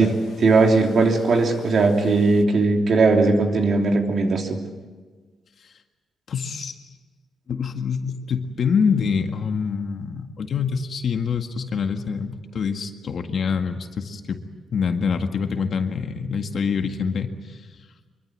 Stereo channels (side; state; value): both; normal; correlation 0.78